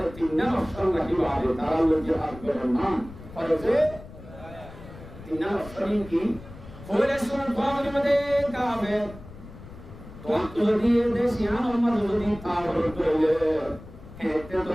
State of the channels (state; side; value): noise; left; rumble, 16 dB below the sound